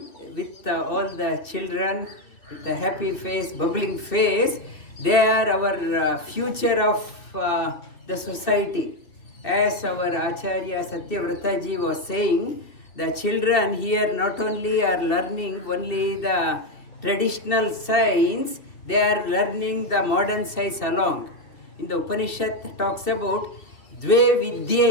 with all the children with a happy face, bubbling face. They are our future of the society. As our Acharya Satyavrataji was saying, the children here not only are learning only the traditional science, they are learning the modern science along. In the Upanishad talks about Dve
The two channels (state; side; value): late; right; 2.4 ms